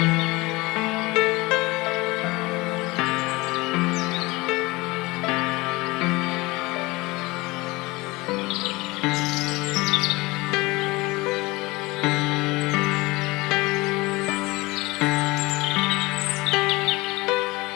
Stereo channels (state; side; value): quieter; right; 22.4 dB